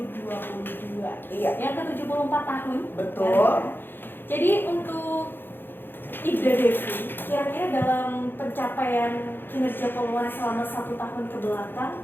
Iya. Yang ke-74 tahun. Betul. Jadi untuk Ida Devi, kira-kira dalam pencapaian kinerja Polwan selama 1 tahun ke belakang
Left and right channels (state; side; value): late; right; 0.10 ms